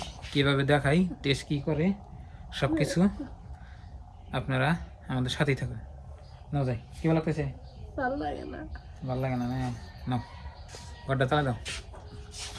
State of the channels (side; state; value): both; identical; correlation 1.00